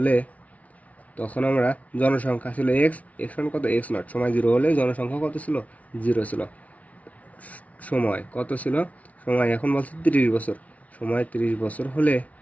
তখন আমরা জনসংখ্যা ছিল এক্স সমান কত এক্স নট। সময় 0 হলে জনসংখ্যা কত ছিল? 0 ছিল। সময় কত ছিল? সময় এখন বলছে 30 বছর। সময় 30 বছর হলে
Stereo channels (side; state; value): right; late; 0.068 ms